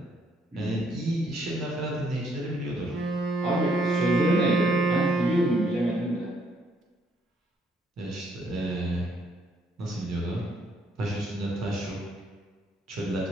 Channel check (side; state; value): both; normal; correlation 0.70